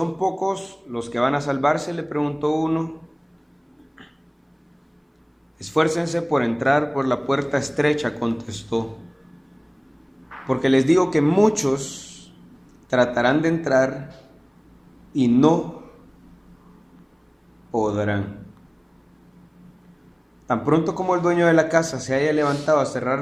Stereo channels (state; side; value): identical; both; correlation 1.00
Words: pocos los que van a salvarse?, le preguntó uno. Esfuércense por entrar por la puerta estrecha, contestó, porque les digo que muchos tratarán de entrar y no podrán. Tan pronto como el dueño de la casa se haya levantado a cerrar